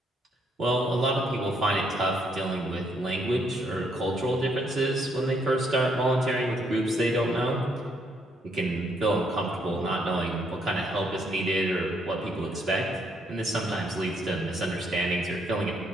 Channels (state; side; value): normal; both; correlation 0.71